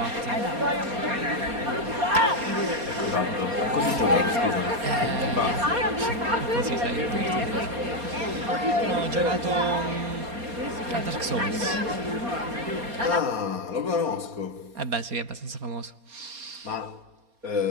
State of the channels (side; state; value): left; late; 4.2 ms